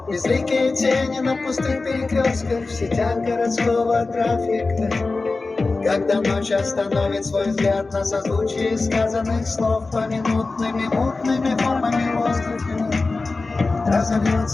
Безликие тени на пустых перекрестках, в сетях городского трафика. Когда ночь остановит свой взгляд на созвучие сказанных слов поминутными мутными формами воздуха,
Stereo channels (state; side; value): quieter; right; 3.7 dB